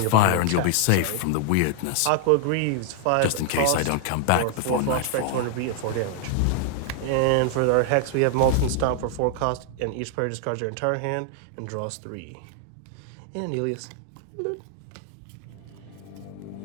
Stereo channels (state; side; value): different; both; correlation 0.00